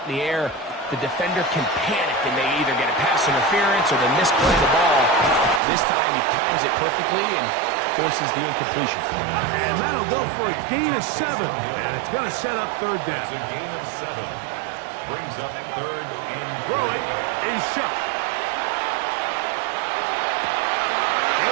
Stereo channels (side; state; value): left; drops out; at 5.6 s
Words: in the air, the defender can panic and they either get a pass interference or they misplay the ball. This time he times it perfectly and forces the incompletion. And that'll go for a gain of 7. And it's going to set up third down. It's a gain of 7. Brings up third and throwing is shot.